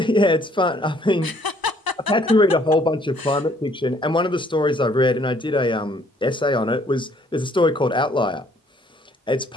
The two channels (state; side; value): normal; both; correlation 0.62